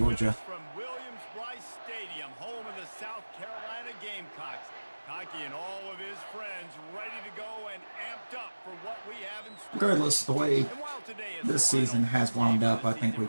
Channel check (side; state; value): both; inverted; correlation -1.00